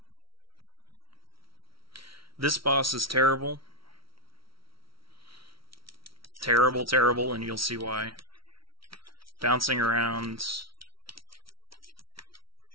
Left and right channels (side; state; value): left; late; 0.75 ms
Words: This boss is terrible. Terrible, terrible, and you'll see why. Bouncing around.